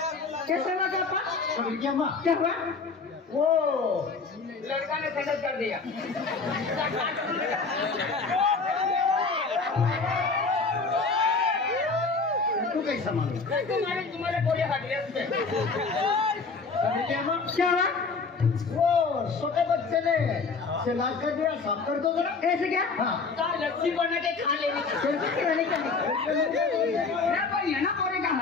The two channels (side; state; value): right; quieter; 4.4 dB